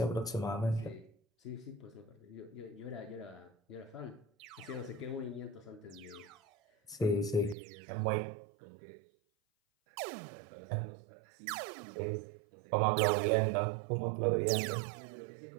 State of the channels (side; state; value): left; drops out; at 7.6 s